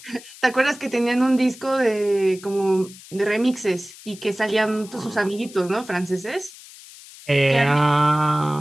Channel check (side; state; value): left; noise; hiss, 19 dB below the sound